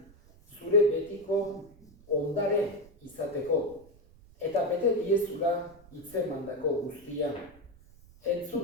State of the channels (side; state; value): right; noise; rumble, 25 dB below the sound